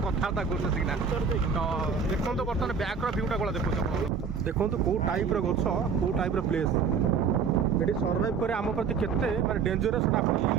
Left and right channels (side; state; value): left; quieter; 6.0 dB